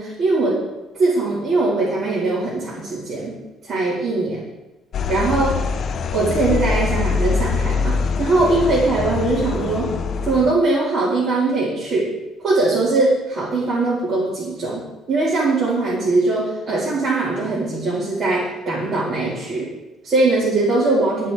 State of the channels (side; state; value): both; normal; correlation 0.63